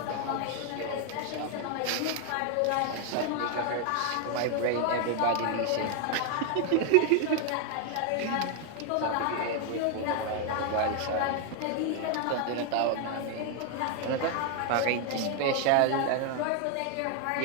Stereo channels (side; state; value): both; different; correlation 0.01